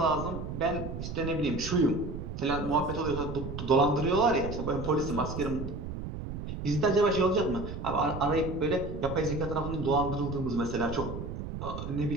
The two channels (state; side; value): noise; right; rumble, 7 dB below the sound